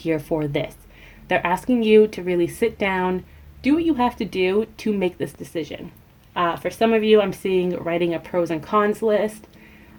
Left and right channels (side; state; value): both; identical; correlation 1.00